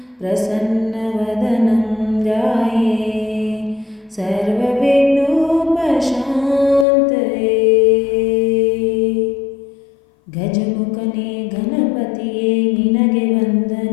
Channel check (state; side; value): drops out; right; at 6.9 s